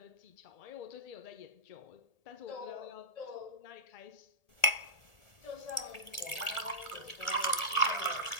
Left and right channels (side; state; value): right; late; 1.8 ms